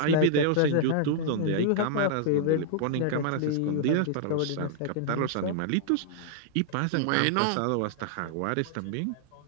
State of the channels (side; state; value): both; different; correlation -0.01